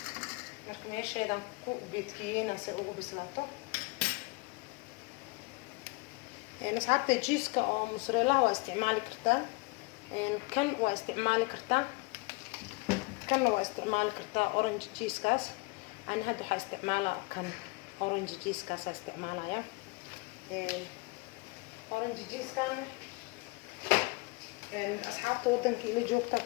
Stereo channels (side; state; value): right; quieter; 26.1 dB